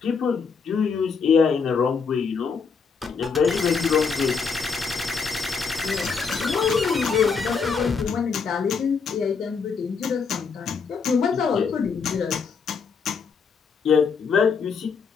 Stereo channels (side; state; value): right; quieter; 5.5 dB